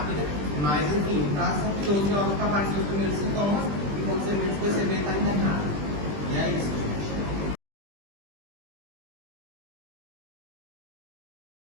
mas enfim, são 12 horas para aparecer os primeiros sintomas e quando você menos perceber, está internado. E é isso.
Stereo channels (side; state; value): left; late; 20 ms